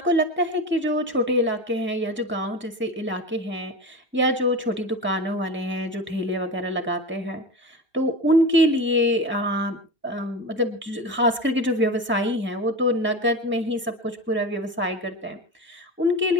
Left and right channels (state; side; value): normal; both; correlation 0.26